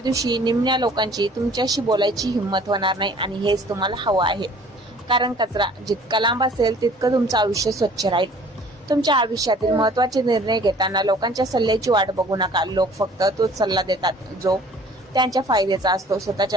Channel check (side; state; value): both; normal; correlation 0.52